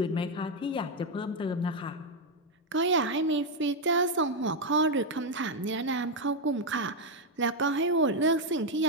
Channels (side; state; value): both; normal; correlation 0.03